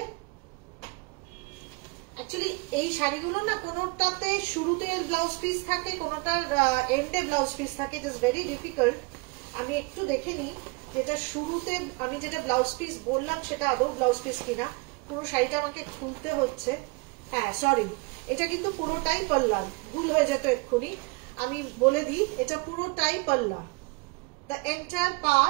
অ্যাকচুয়ালি এই শাড়িগুলো না কোনোটাতে শুরুতে ব্লাউজ পিস থাকে, কোনোটার এন্ডে ব্লাউজ পিস থাকে, ইট ইজ ভেরি ডিফিকাল্ট। আমি একটু দেখে নিই যেটা শুরুতে আমি যেটা ব্লাউজ পিস বললাম সেটা আদৌ ব্লাউজ পিস কিনা। পুরো শাড়িটা আমাকে খুলতে হচ্ছে। হ্যাঁ সরি, এটা কিন্তু পুরোটাই পাল্লা, ভুল হয়ে যেত এক্ষুনি। আমি বলে দিই এটা পুরোটাই পাল্লা। দ্য এন্টায়ার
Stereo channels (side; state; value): left; quieter; 28.7 dB